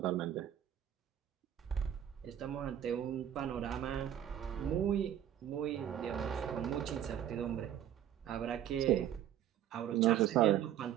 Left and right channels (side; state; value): left; quieter; 10.6 dB